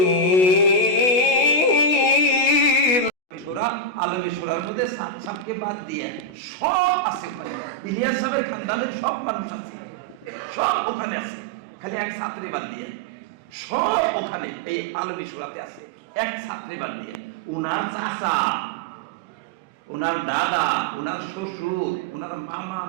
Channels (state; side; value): late; right; 16 ms